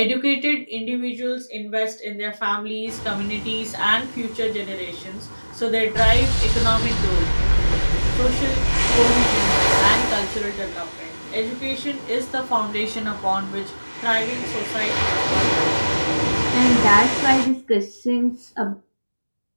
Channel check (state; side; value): inverted; both; correlation -1.00